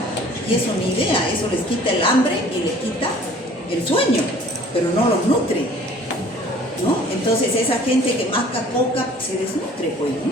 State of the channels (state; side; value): normal; both; correlation 0.51